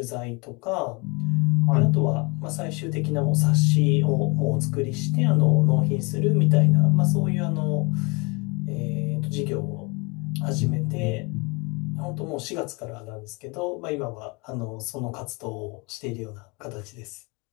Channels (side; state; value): right; quieter; 29.2 dB